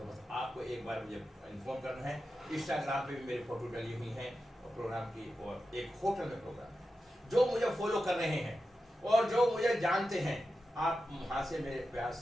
बस आपको एक बार मुझे इन्फॉर्म करना है। इंस्टाग्राम पे भी मेरी फोटो डली हुई है प्रोग्राम की, और एक होटल में प्रोग्राम है। जो मुझे फॉलो कर रहे हैं और जो मुझे जानते हैं, आप वहां से मेरे पास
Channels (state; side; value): normal; both; correlation 0.91